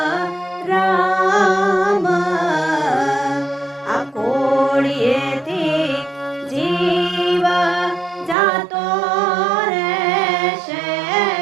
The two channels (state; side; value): drops out; left; at 8.3 s